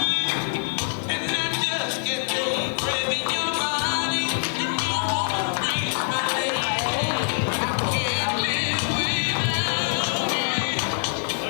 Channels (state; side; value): silent; right; digital silence